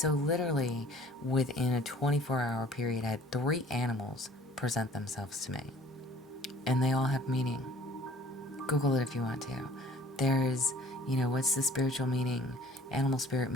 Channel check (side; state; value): both; normal; correlation 0.52